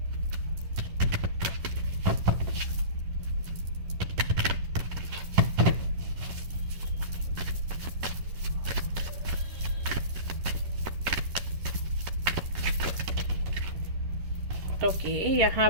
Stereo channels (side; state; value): left; late; 11 ms